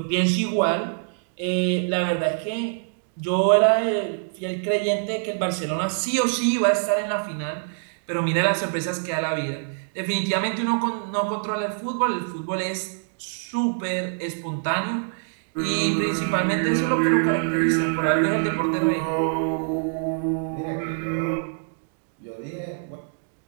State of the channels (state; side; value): silent; left; digital silence